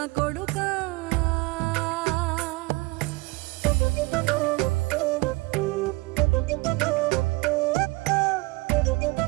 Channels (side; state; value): left; quieter; 23.6 dB